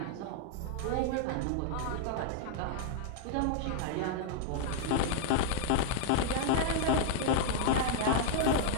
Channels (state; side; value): different; both; correlation -0.01